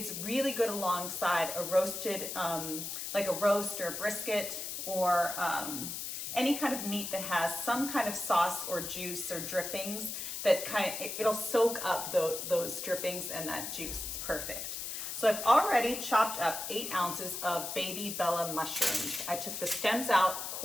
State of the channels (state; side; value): noise; left; hiss, 5 dB below the sound